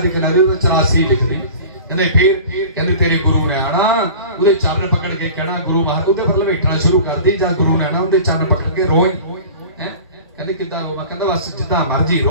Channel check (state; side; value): inverted; both; correlation -0.40